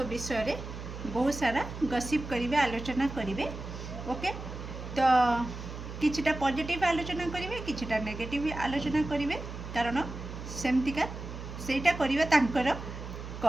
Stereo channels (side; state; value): right; noise; hum, 9 dB below the sound